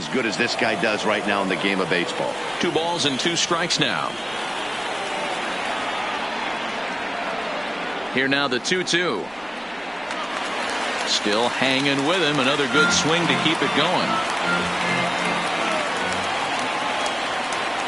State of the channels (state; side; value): noise; right; rumble, 29 dB below the sound